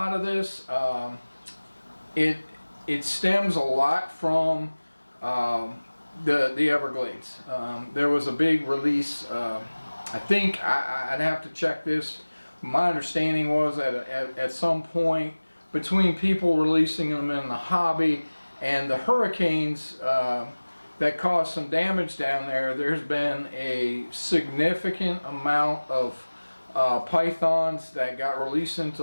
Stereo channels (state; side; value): inverted; both; correlation -1.00